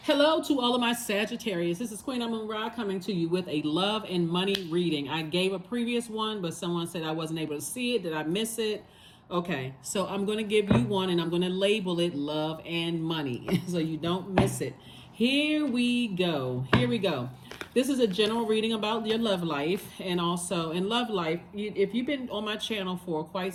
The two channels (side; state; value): both; identical; correlation 1.00